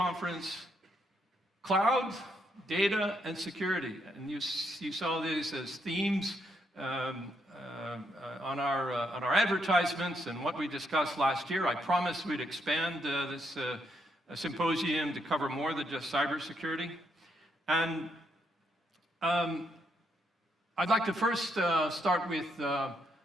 cloud, data, and security. And you saw these as themes on our advertisements and what we discussed last year. I promised we'd expand this symposium to cover more than just cybersecurity. And I'd like to first start with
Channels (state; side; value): normal; both; correlation 0.77